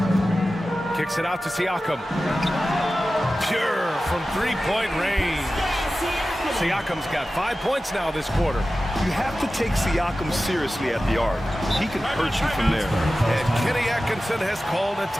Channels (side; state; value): both; normal; correlation 0.94